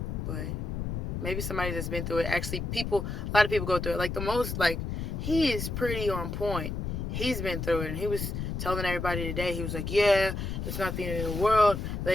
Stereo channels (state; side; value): noise; left; rumble, 3 dB below the sound